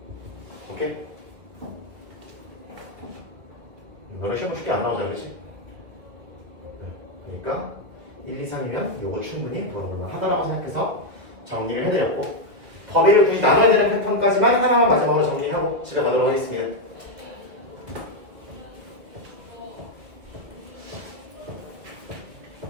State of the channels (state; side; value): late; left; 2.1 ms